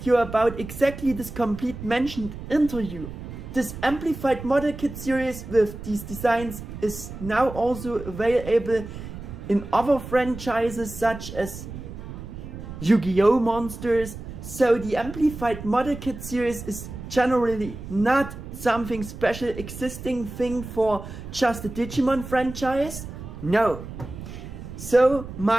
about exactly this complete mentioned interview. This Amplified model kit series with these designs is now also available in other franchises such as Yu-Gi-Oh! Monsters, so the Amplified Model Kit series is generally not something special existing thing for just the Digimon franchise. No. So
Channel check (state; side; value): noise; right; rumble, 11 dB below the sound